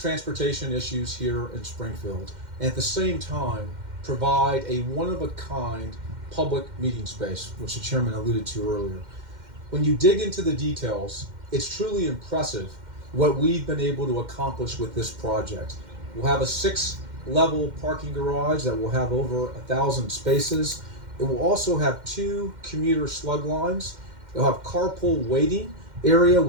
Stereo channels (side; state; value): left; late; 2.1 ms